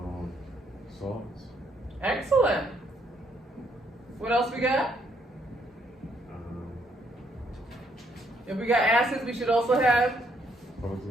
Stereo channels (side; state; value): both; normal; correlation 0.71